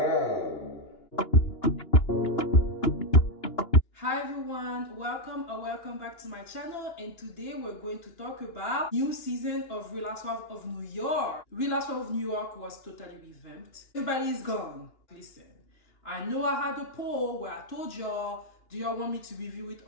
Hi everyone, welcome back to my channel, and today we're going to talk about new season of Real Housewives of New York. Real Housewives of New York was totally revamped. Everybody's gone. Listen, I know I had a poll where I told y'all, do y'all want me to review it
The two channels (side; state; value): right; late; 2.9 ms